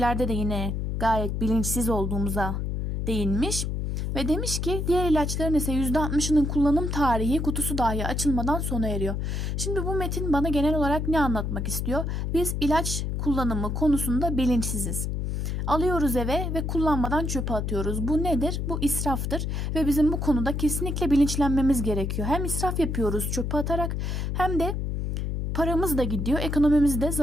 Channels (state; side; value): noise; left; hum, 1 dB below the sound